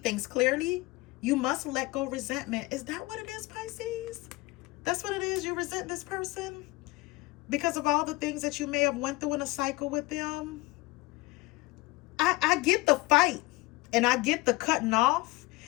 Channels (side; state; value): right; quieter; 21.8 dB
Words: clearly, you must let go resentment. Is that what it is, Pisces? That's what it is? You resent this person because of all the things that you may have went through in a cycle with them? I get the fight, and I get the cutting off,